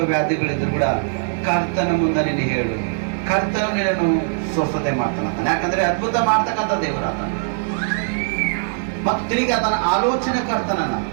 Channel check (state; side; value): silent; left; digital silence